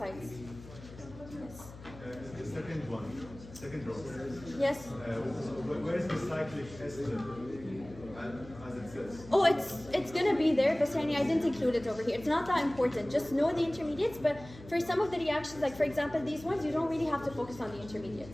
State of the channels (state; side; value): noise; left; hum, 17 dB below the sound